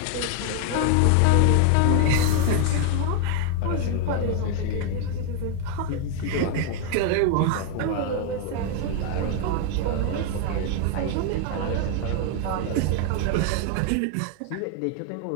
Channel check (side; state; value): both; different; correlation 0.00